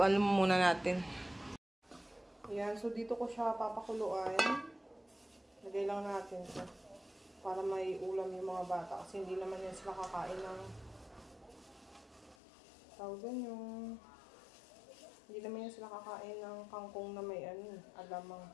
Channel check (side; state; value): right; drops out; at 12.4 s